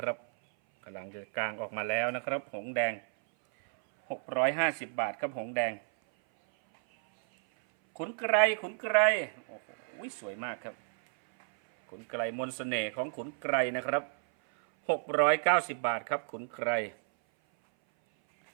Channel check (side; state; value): left; silent; 57 dB below the other